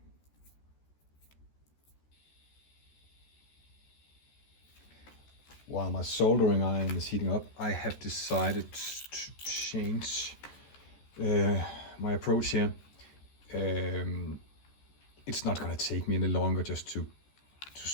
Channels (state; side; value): late; right; 14 ms